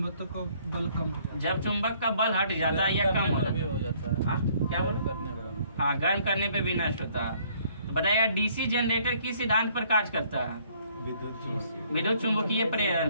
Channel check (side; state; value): both; inverted; correlation -0.62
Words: का बल कम, जब चुंबक का बल हट जाता है या कम हो जाता है। क्या बोल? हाँ, गर्म करने पे भी नष्ट होता है। तो बताइएगा डीसी जनरेटर किस सिद्धांत पर कार्य करता है? विद्युत चुंबकीय प्रेरण